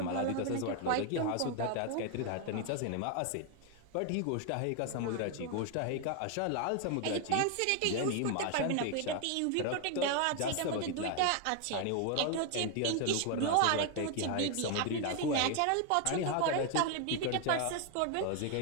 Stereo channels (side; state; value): both; different; correlation 0.01